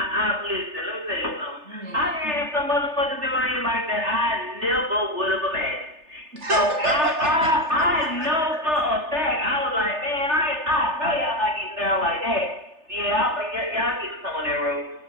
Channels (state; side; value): late; left; 3.3 ms